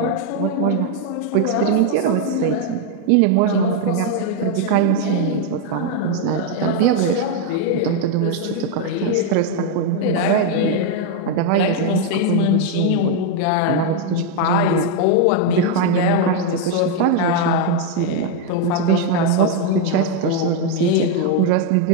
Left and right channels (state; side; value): different; both; correlation 0.01